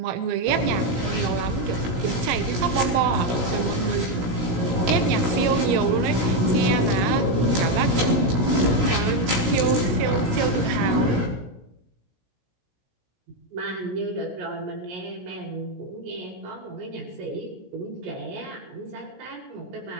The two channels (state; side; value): late; left; 16 ms